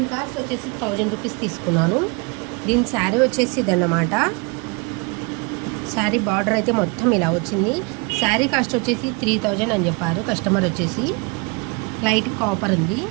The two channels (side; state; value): left; quieter; 30.8 dB